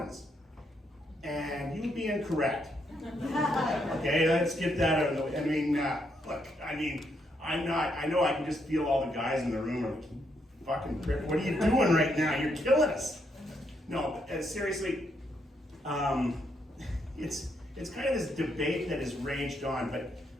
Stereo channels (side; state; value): both; normal; correlation 0.76